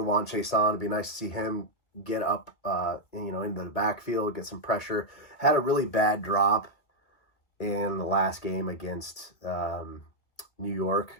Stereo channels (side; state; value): right; late; 1.7 ms